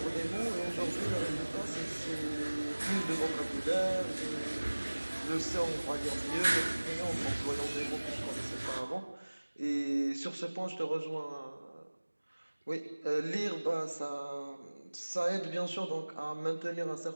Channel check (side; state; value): both; inverted; correlation -1.00